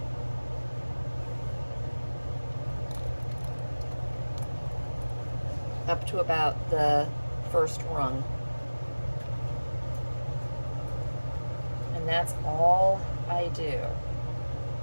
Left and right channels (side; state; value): both; inverted; correlation -1.00